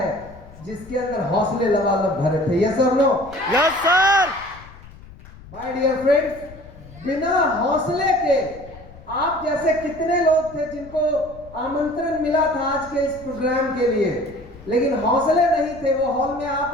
जिसके अंदर हौसले लबालब भरे थे। यस और no? Yes sir. My dear friends, बिना हौसले के आप जैसे कितने लोग थे जिनको आमंत्रण मिला था आज के इस प्रोग्राम के लिए, लेकिन हौसले नहीं थे, वो हॉल में आ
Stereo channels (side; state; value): left; noise; rumble, 19 dB below the sound